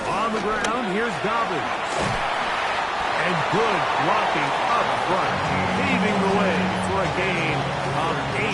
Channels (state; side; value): identical; both; correlation 1.00